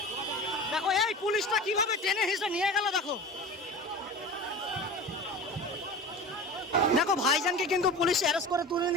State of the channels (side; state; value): both; normal; correlation 0.34